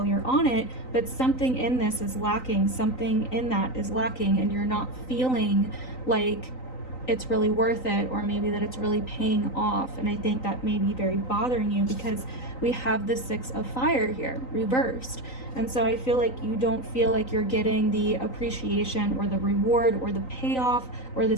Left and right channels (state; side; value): late; right; 3.9 ms